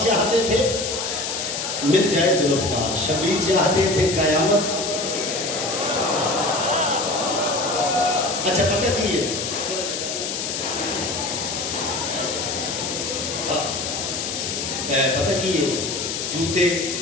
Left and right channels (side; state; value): left; noise; hiss, 3 dB below the sound